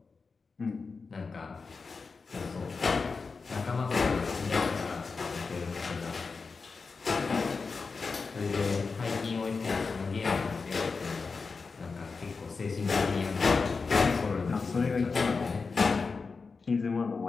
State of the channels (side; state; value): right; quieter; 4.6 dB